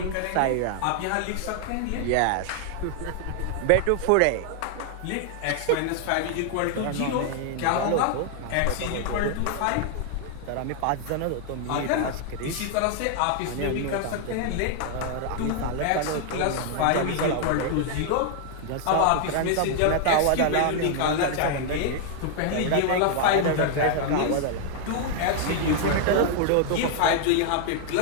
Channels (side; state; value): both; different; correlation 0.00